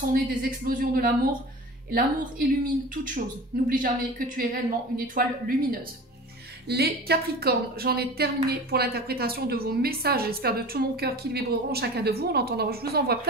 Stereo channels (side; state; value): both; normal; correlation 0.36